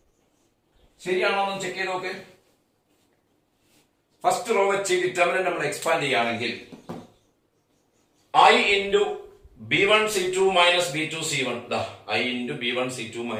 ശരിയാണോ എന്ന് ചെക്ക് ചെയ്ത് നോക്ക്. ഫസ്റ്റ് റോ വെച്ച് ഡിറ്റർമിനന്റ് നമ്മൾ എക്സ്പാൻഡ് ചെയ്യുകയാണെങ്കിൽ I into B1 C2 minus B2 C1 I into B1 C2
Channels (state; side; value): identical; both; correlation 1.00